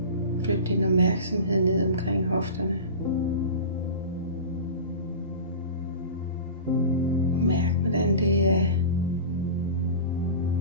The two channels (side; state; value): both; inverted; correlation -0.32